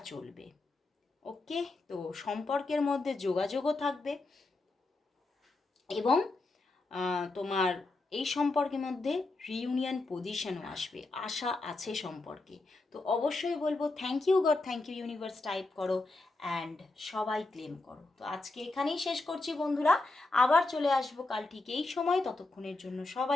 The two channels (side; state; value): right; quieter; 3.2 dB